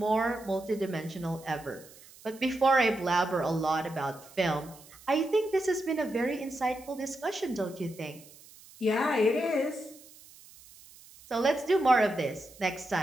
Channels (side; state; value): right; noise; hiss, 22 dB below the sound